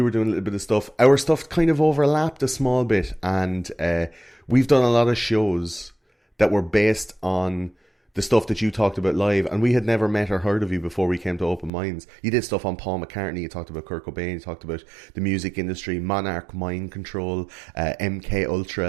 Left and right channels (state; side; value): drops out; left; at 11.7 s